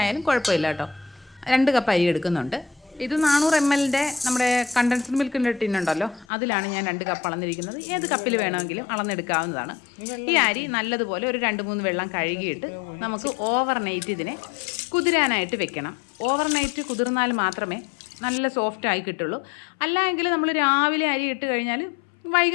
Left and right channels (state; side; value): drops out; right; at 6.2 s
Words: ആയാലും കുഴപ്പമില്ല കേട്ടോ. 2 കപ്പ് അരി എടുക്കുന്നുണ്ട്. ഇത് 400 ml നമ്മുടെ കണ്ടൻസ്ഡ് മിൽക്കിൻ്റെ ടിന്നുണ്ടല്ലോ, അതിലാണ് ഞാൻ 2 കപ്പ് അളന്നിരിക്കുന്നത്. ഏത് കപ്പിൽ വേണമെങ്കിലും അളന്നെടുക്കാവുന്നതാണ്. ഈ അരി നല്ലതുപോലെ ഒരു 2-3 വെള്ളം കഴുകിയിട്ട് നമുക്ക് ഓവർനൈറ്റ് ഇതിനെ കുതിരാനായിട്ട് വെക്കണം. ഓവർനൈറ്റ് കുതിർന്നാൽ മാത്രമേ നല്ല സോഫ്റ്റായി കിട്ടുള്ളൂ. അല്ലെങ്കിൽ നമ്മൾ രാവിലെ അരി ഇട്ട് കഴിഞ്ഞാൽ